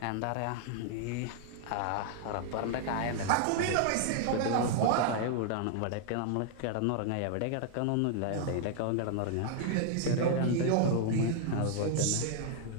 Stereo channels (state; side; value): different; both; correlation 0.00